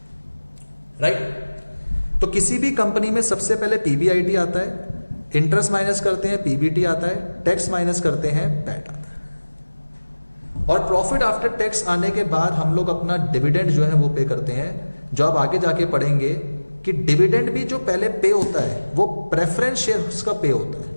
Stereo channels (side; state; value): both; inverted; correlation -1.00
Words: राइट? तो किसी भी कंपनी में सबसे पहले पीबीआईटी आता है, इंटरेस्ट माइनस करते हैं पीबीटी आता है, टैक्स माइनस करते हैं पैट आता है। और प्रॉफिट आफ्टर टैक्स आने के बाद हम लोग अपना डिविडेंड जो है वो पे करते हैं। जो आप आगे जाके पढ़ेंगे कि डिविडेंड भी जो पहले पे होता है वो प्रेफरेंस शेयर्स का पे होता है,